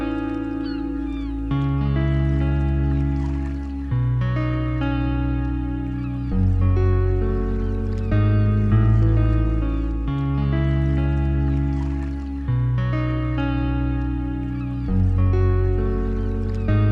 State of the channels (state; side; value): identical; both; correlation 1.00